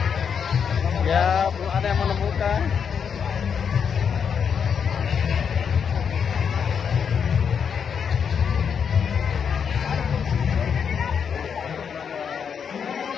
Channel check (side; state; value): right; quieter; 7.0 dB